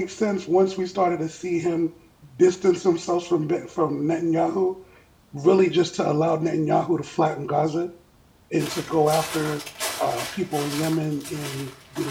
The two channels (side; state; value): both; identical; correlation 1.00